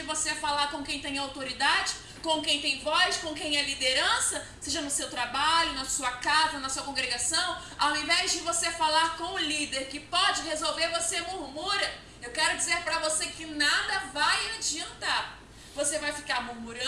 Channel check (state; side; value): identical; both; correlation 1.00